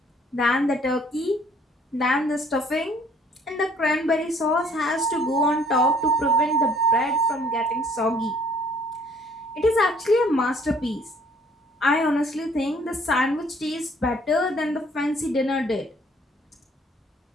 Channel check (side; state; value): both; normal; correlation 0.60